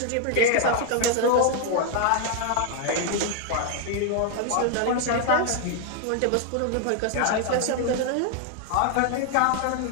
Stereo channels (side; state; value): both; different; correlation 0.00